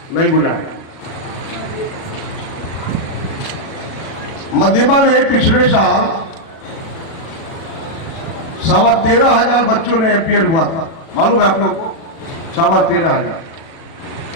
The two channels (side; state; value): right; late; 36 ms